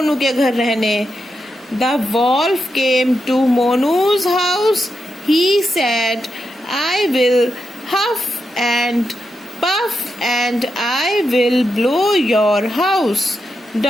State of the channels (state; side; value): normal; both; correlation 0.85